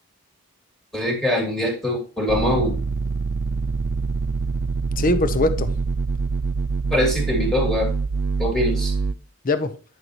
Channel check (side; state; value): both; normal; correlation 0.57